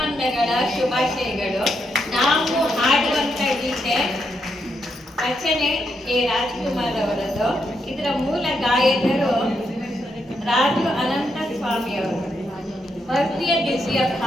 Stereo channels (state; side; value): normal; both; correlation 0.80